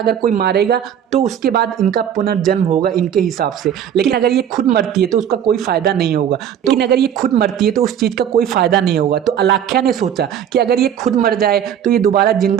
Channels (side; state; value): left; quieter; 9.3 dB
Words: कोई मारेगा तो उसके बाद इनका पुनर्जन्म होगा इनके हिसाब से। लेकिन अगर ये खुद मरती है तो उसका कोई फायदा नहीं होगा। लेकिन अगर ये खुद मरती है तो उस चीज का कोई फायदा नहीं होगा। तो अलाख्या ने सोचा कि अगर ये खुद मर जाए तो ये दोबारा